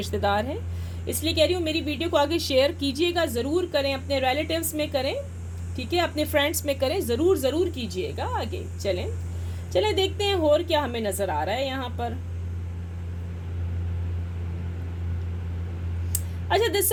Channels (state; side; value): identical; both; correlation 1.00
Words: हैं। इसलिए कह रही हूँ मेरी वीडियो को आगे शेयर कीजिएगा, ज़रूर करें, अपने रिलेटिव्स में करें, ठीक है, अपने फ्रेंड्स में करें, ज़रूर कीजिएगा। आगे चलें देखते हैं और क्या हमें नज़र आ रहा है यहाँ पर। अच्छा,